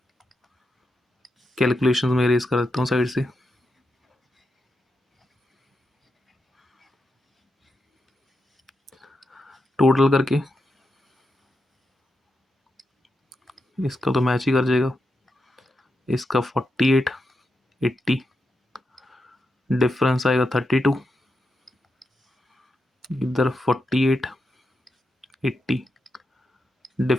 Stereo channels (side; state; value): both; normal; correlation 0.86